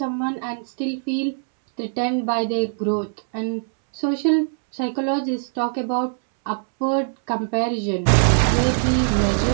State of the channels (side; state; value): left; silent; 64 dB below the other